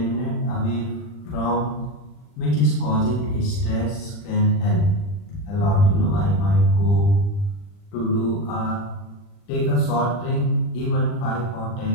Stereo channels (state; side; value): late; right; 40 ms